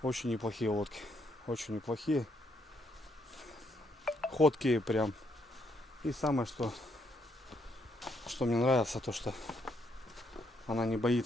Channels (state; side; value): normal; both; correlation 0.74